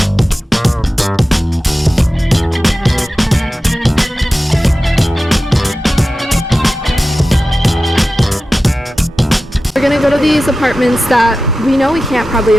We're gonna go to these apartments that we know we can't probably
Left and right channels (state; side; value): normal; both; correlation 0.94